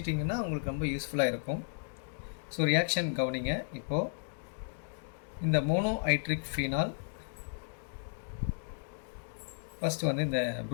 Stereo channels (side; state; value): right; silent; digital silence